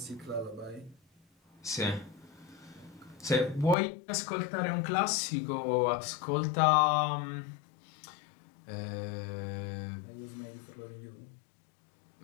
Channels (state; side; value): drops out; right; at 3.8 s